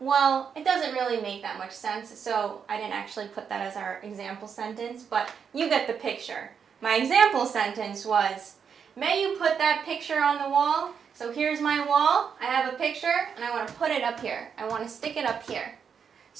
it doesn't really make that much sense, so I didn't actually put that as our example sentence, but you get the picture. My example sentence was, may you put that picture on the wall? So here's my wall, I have a picture, and I want to put it up here. I want to stick it up here.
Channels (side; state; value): left; quieter; 6.9 dB